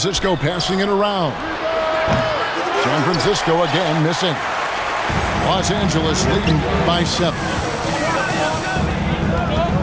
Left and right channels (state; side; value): identical; both; correlation 1.00